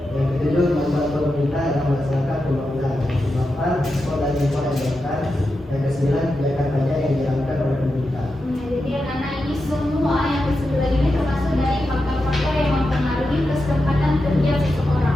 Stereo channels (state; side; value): normal; both; correlation 0.89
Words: Yang ketujuh, kemampuan pemerintah dalam melaksanakan pembangunan. Yang kedelapan, ekspor dan impor yang dilakukan. Yang kesembilan, kebijakan pajak yang dijalankan oleh pemerintah. Jadi anak-anak ini semua yang disebut ini termasuk dari faktor-faktor yang mempengaruhi kesempatan kerja